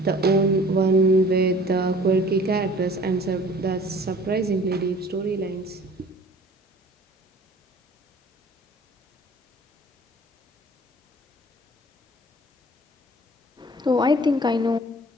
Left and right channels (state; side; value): normal; both; correlation 0.49